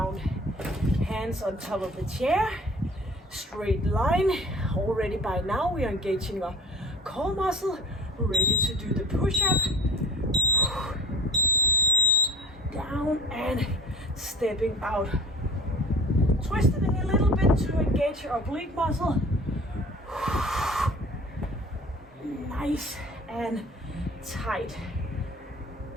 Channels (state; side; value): normal; both; correlation 0.42